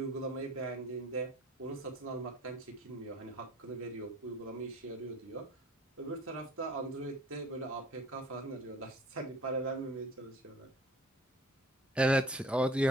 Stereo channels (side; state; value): both; normal; correlation 0.50